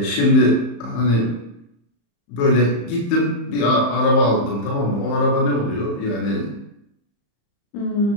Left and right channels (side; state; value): right; late; 35 ms